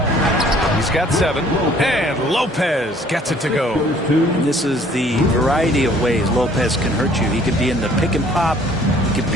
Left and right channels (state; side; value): normal; both; correlation 0.57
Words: He's got 7. And Lopez gets it to go. And this is the variety of ways Lopez can hurt you. He could be in the pick and pop. He could